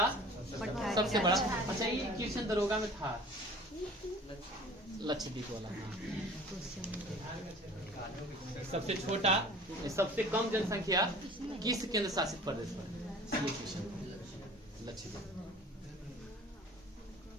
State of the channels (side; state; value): both; normal; correlation 0.45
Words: सबसे बड़ा। अच्छा, ये क्वेश्चन दरोगा में था, लक्षद्वीप वाला। सबसे छोटा, सबसे कम जनसंख्या किस केंद्र शासित प्रदेश पर? ये क्वेश्चन लक्षद्वीप।